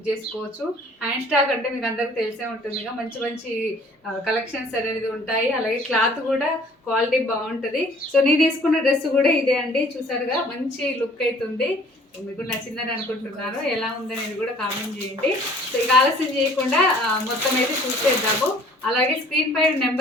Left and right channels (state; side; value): normal; both; correlation 0.54